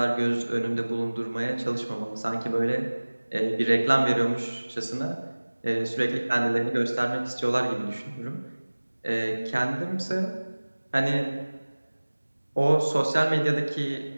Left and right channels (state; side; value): inverted; both; correlation -1.00